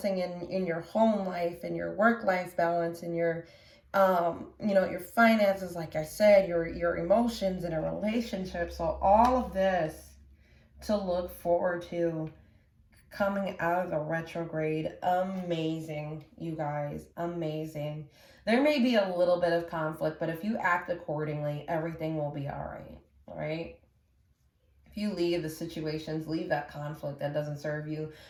in your home life, in your work life balance, in your your finances, like I said, your emotions in a relationship. So all of this to look forward to coming out of the retrograde. Amazing, you guys, amazing. There may be a little bit of conflict, but if you act accordingly, everything will be all right? You leave the situations, leave that conflict that doesn't serve you.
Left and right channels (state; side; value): identical; both; correlation 1.00